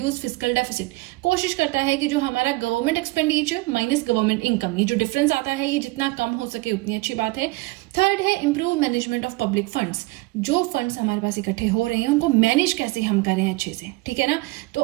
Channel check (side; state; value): left; quieter; 22.4 dB